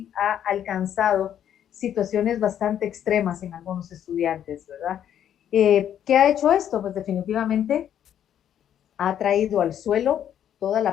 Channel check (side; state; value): right; quieter; 10.0 dB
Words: ha alcanzado situaciones bastante extremas en algunos estudiantes, ¿verdad? ¿Qué ha hecho esto? Pues definitivamente ha traído al suelo toda